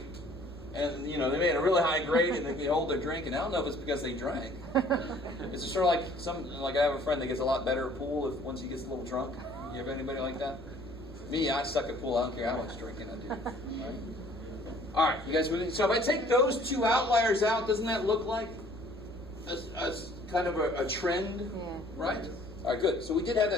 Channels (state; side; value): normal; both; correlation 0.56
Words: And, you know, they made a really high grade and they can hold their drink. And I don't know if it's because they drank. It's just sort of like I have a friend that gets a lot better at pool once he gets a little drunk. You have anybody like that? Me, I suck at pool. I don't care how much drinking I do. Right? All right, you guys with me? So if I take those two outliers out, doesn't that look like a kind of a trend? Yeah. Right? All right, good. So we did have